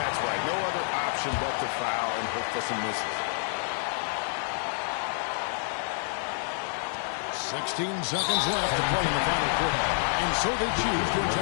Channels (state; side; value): silent; right; 59 dB below the other